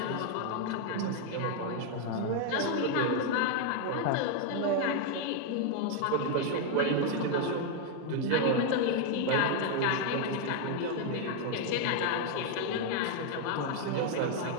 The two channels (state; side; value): different; both; correlation 0.00